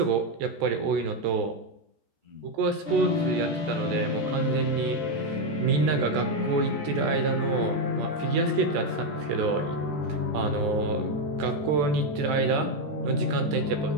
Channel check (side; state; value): left; late; 14 ms